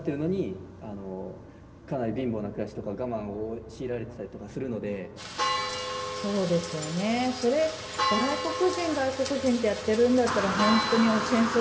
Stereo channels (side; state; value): both; identical; correlation 1.00